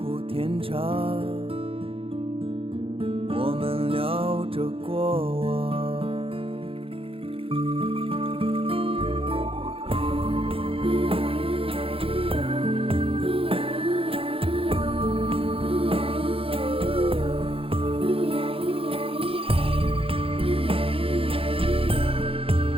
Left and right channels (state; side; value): late; left; 0.27 ms